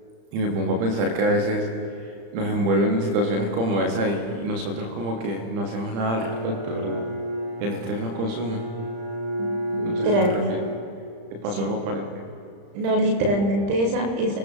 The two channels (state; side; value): late; left; 35 ms